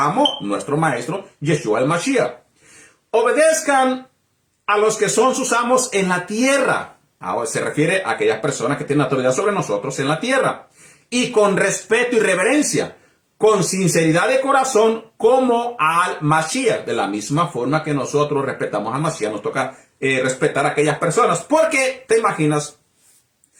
nuestro maestro, Yeshua el Mashiach. Obedezcan a los que son sus amos en la tierra. Ahora se refiere a aquellas personas que tienen autoridad sobre nosotros en la tierra. Y con respeto y reverencia, con sinceridad de corazón, como al Mashiach. De la misma forma que nosotros respetamos al Mashiach, nos toca respetar a aquellas personas. Porque te imaginas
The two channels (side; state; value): both; identical; correlation 1.00